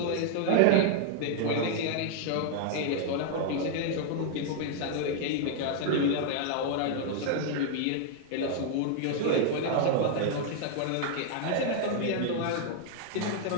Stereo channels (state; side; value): different; both; correlation 0.00